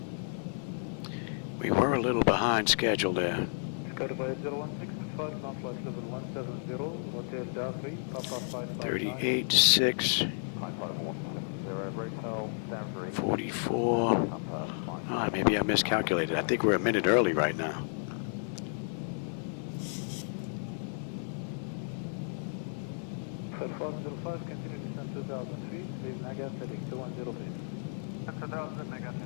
We were a little behind schedule there. Qatar 0165, ground flight level 170, Hotel Jafri, Papa 559. 38.6. 44. Maybe I miscalculated. I think we're a minute early right now. Flight 05, continue descent 2,000 feet, leave Nagas heading 210 feet. 2,000, Nagas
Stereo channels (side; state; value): right; silent; digital silence